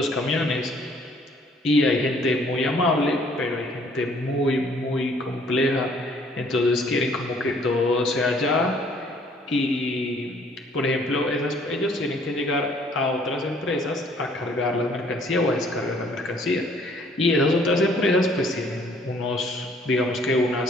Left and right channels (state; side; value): normal; both; correlation 0.60